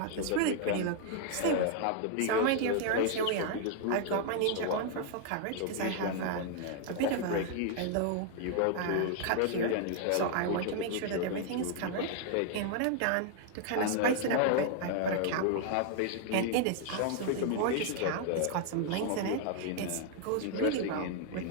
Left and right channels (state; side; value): different; both; correlation 0.00